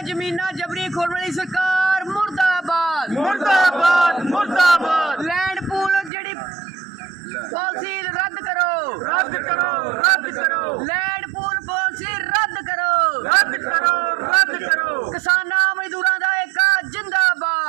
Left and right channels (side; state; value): left; drops out; at 6.1 s